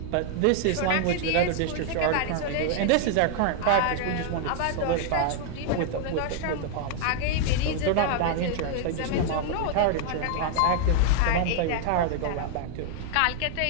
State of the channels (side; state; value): both; different; correlation 0.00